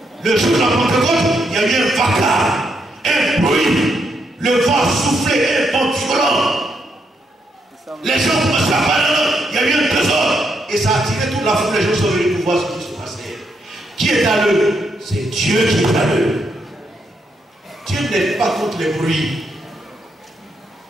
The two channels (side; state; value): both; normal; correlation 0.78